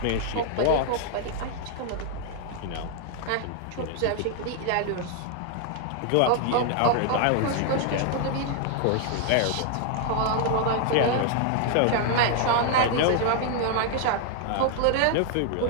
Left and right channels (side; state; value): both; different; correlation 0.00